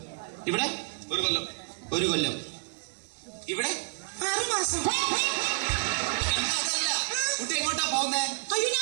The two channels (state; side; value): silent; left; 58 dB below the other